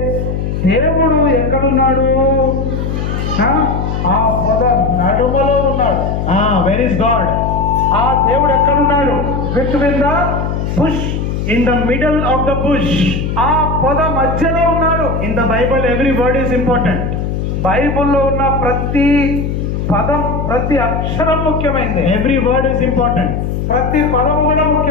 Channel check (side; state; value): left; noise; hum, 2 dB below the sound